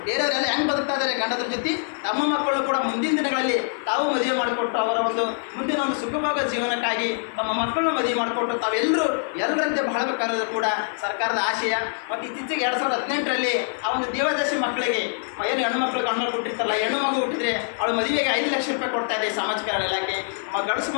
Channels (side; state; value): right; silent; 56 dB below the other